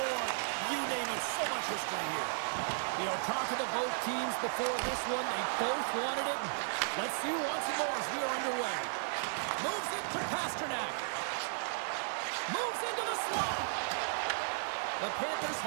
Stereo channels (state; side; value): silent; left; digital silence